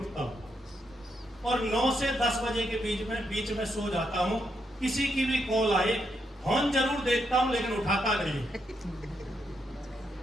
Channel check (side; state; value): both; normal; correlation 0.80